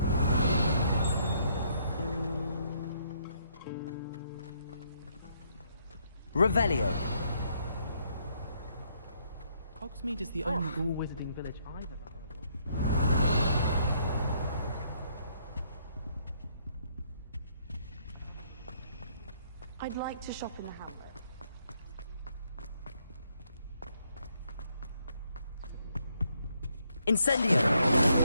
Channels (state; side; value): inverted; both; correlation -0.71